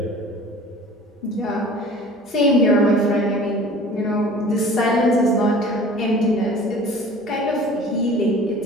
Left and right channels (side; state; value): both; normal; correlation 0.44